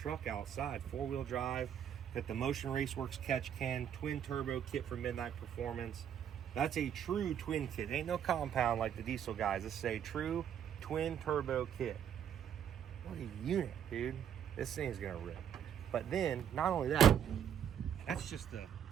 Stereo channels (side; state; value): left; quieter; 9.0 dB